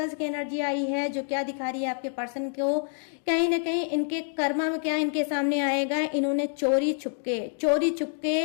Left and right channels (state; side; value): silent; right; 60 dB below the other